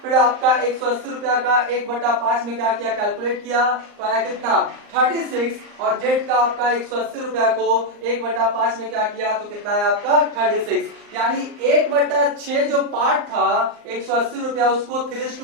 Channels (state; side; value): late; left; 39 ms